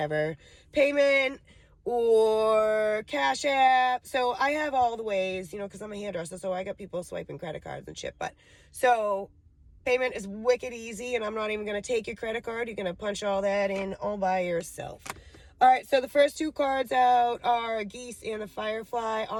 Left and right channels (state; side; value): identical; both; correlation 1.00